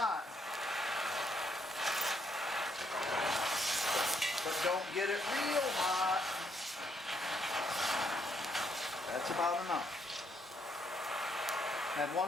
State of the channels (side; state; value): both; normal; correlation 0.73